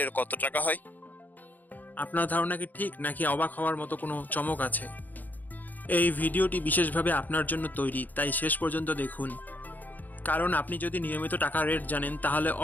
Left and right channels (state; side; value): late; right; 0.084 ms